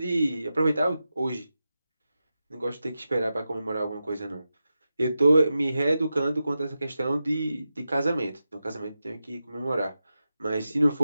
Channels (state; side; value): inverted; both; correlation -0.91